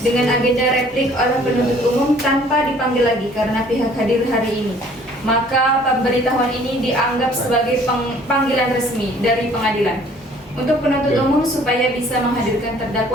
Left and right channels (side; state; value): both; normal; correlation 0.56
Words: dengan agenda replik oleh penuntut umum tanpa dipanggil lagi karena pihak hadir hari ini. Maka pemberitahuan ini dianggap sebagai panggilan resmi dari pengadilan untuk penuntut umum supaya bisa menghadirkan